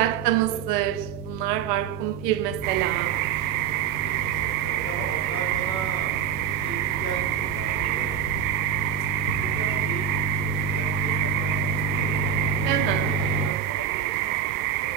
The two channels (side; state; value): left; quieter; 8.4 dB